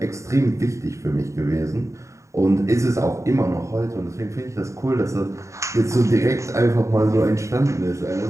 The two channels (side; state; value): left; late; 0.14 ms